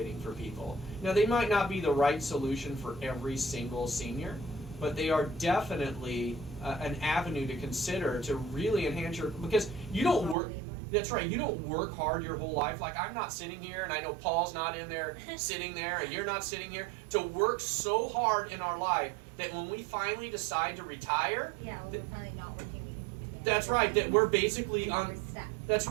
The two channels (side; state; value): left; drops out; at 10.4 s